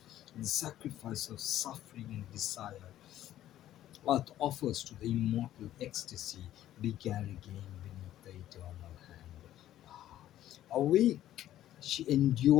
the sacrifice of suffering and desire what offers to the immortal ecstasy began again beneath the eternal hand. Awake, she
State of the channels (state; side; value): quieter; right; 12.8 dB